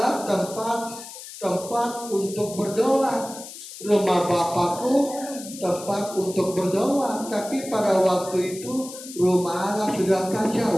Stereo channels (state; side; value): noise; left; hiss, 13 dB below the sound